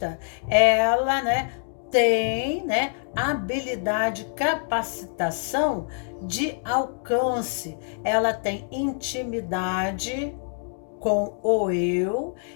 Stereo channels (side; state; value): right; silent; digital silence